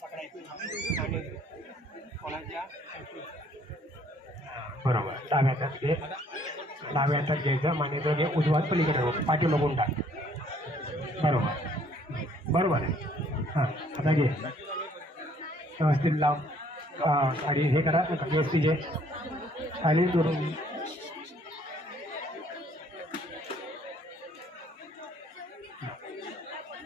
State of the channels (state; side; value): normal; both; correlation 0.62